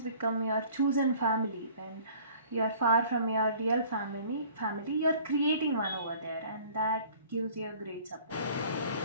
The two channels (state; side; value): inverted; both; correlation -0.50